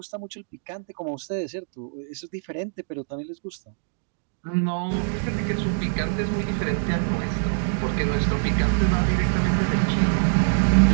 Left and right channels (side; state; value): left; silent; digital silence